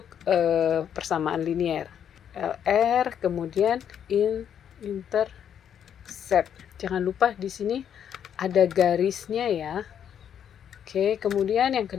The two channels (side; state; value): right; quieter; 8.9 dB